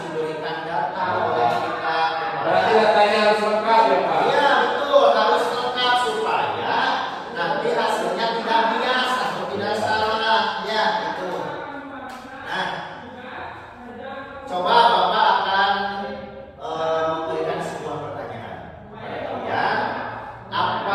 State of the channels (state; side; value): identical; both; correlation 1.00